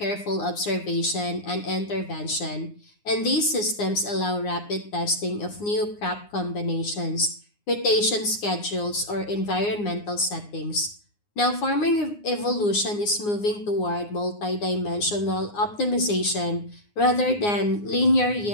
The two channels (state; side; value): late; right; 9.7 ms